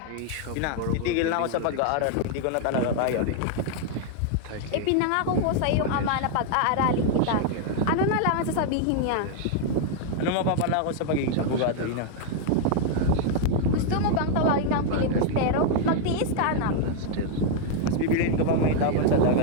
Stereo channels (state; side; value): different; both; correlation 0.00